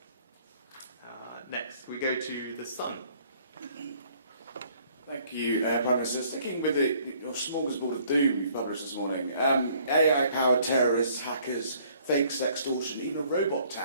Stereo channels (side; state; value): both; inverted; correlation -0.60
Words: Next, we go to the sun. Thank you, Prime Minister. Sticking with your smorgasbord of doom you published this morning, AI-powered terrorists, hackers, fakes, extortion, even a robot